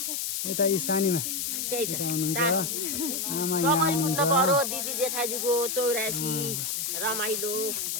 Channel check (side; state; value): left; noise; hiss, 1 dB below the sound